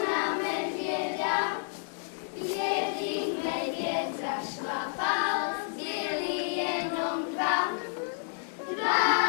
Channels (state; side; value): silent; right; 57 dB below the other